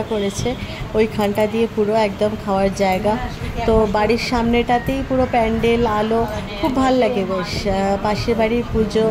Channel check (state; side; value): identical; both; correlation 1.00